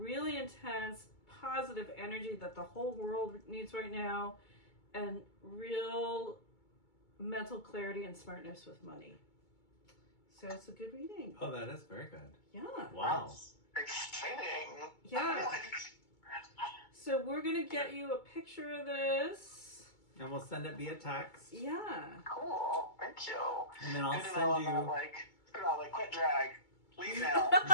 intense positive energy that the whole world needs right now, and real mental clarity and smartness with money. So it's a good reading. Oh, that is very good. Yeah. Wow. That's exciting. Yeah. So we're going to get you a picture of this. And we'll send it via text. Yeah. Cool. Thank you. And then I'll Good to send know you. I'm not like, quit drag. Leave now.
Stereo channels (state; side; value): late; right; 2.2 ms